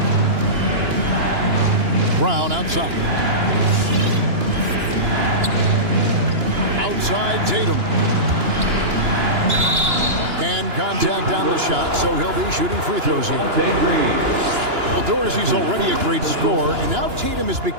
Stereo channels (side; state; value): left; late; 2.9 ms